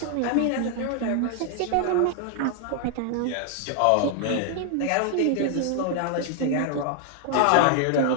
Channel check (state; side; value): different; both; correlation 0.00